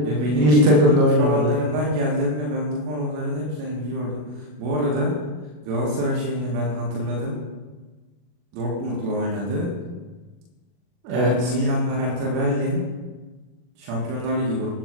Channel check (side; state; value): left; late; 40 ms